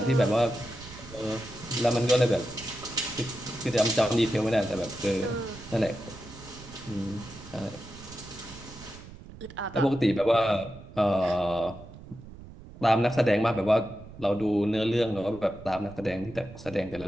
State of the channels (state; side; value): noise; right; rumble, 17 dB below the sound